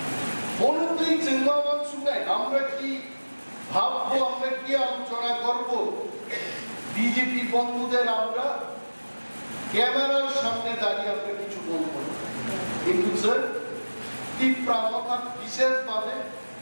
বলতেই চিন্তাবান শুনে আমরা কি ভাববো আমরা কি আলোচনা করব বিজেপি বন্ধুদের আমরা ক্যামেরার সামনে দাঁড়িয়ে আমরা কিছু বলবো কিন্তু স্যার তীব্রতা বিশেষভাবে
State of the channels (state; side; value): inverted; both; correlation -1.00